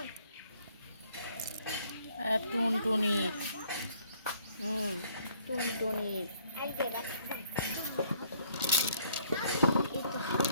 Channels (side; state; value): both; inverted; correlation -0.63